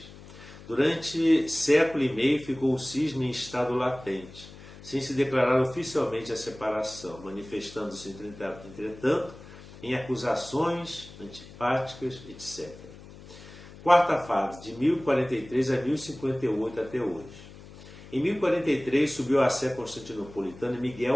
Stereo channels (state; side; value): noise; left; hum, 18 dB below the sound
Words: Durante século e meio ficou o cisma em estado latente, sem se declarar oficialmente a separação, manifestando-se, entretanto, em acusações antipáticas, etc. Quarta fase, de 1043 a 1058 até hoje. Em 1043 subiu à sé constantinopolitana